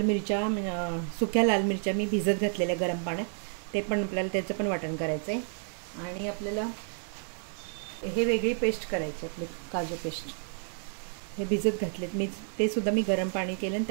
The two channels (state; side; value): silent; left; 58 dB below the other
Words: मिरच्या, सुक्या लाल मिरच्या मी भिजत घातलेल्या गरम पाण्यात, ते पण आपल्याला त्याचं पण वाटण करायचं आहे. आणि आपल्याला हे वेगळी पेस्ट करायची, आपली काजू पेस्ट. हे भिजत घातलेत मी, ते सुद्धा मी गरम पाणी केलं आणि